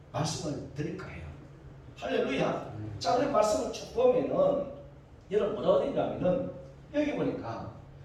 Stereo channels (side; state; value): both; identical; correlation 1.00